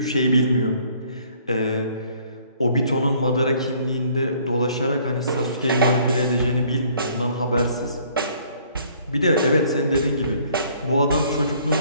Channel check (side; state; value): both; inverted; correlation -0.60